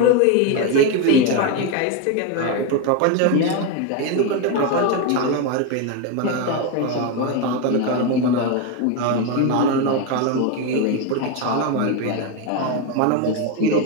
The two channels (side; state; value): both; different; correlation 0.03